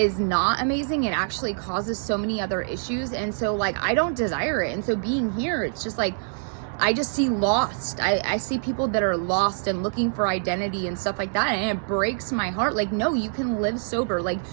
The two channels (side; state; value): left; silent; 62 dB below the other